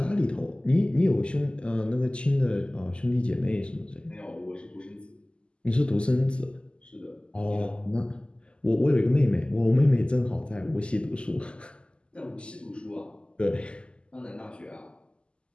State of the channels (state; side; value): late; right; 0.052 ms